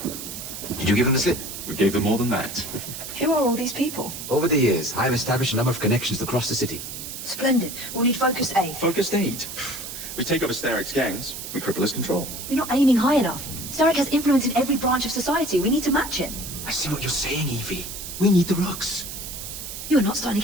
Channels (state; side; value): noise; right; hiss, 9 dB below the sound